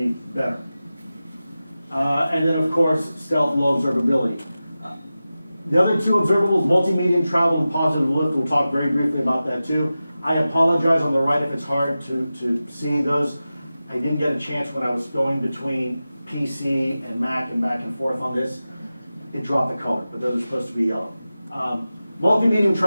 better. And then, of course, stealth, low observability. The other two observables, multi-medium travel and positive lift, we'll talk very briefly about that too. I apologize on the right if it's hard to see those. I didn't get a chance when I was going between PC and Mac and back and forth on this. It dropped the color, but those are supposed to be yellow. Multi-medium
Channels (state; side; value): inverted; both; correlation -0.94